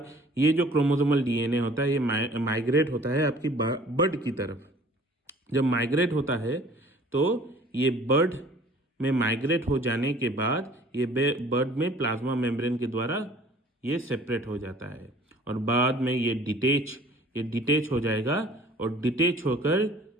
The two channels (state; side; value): normal; both; correlation 0.51